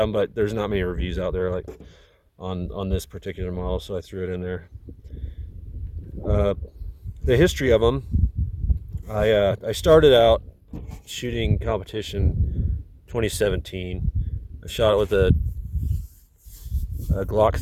them, but there's not many reviews out there like on this particular model, so I threw it in there. The history of them, I started out shooting competition 2017. I shot it with a Glock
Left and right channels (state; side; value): identical; both; correlation 1.00